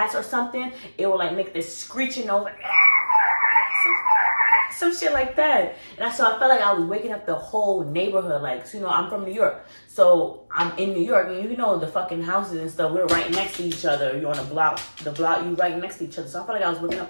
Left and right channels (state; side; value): inverted; both; correlation -1.00